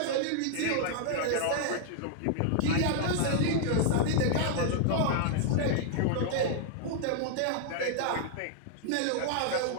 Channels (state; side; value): different; both; correlation -0.01